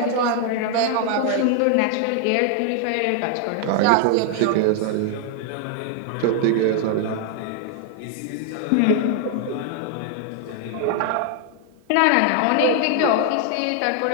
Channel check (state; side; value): different; both; correlation 0.00